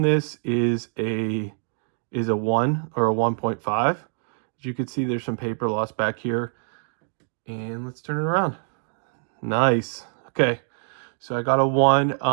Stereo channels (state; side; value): silent; left; digital silence